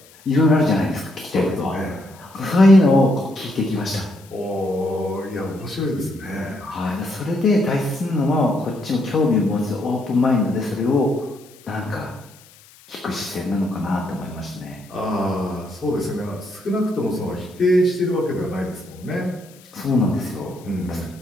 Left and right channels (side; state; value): left; noise; hiss, 25 dB below the sound